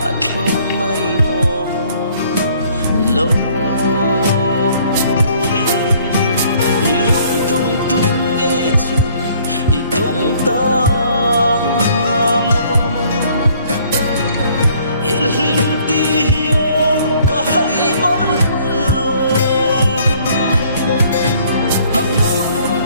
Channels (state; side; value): inverted; both; correlation -0.60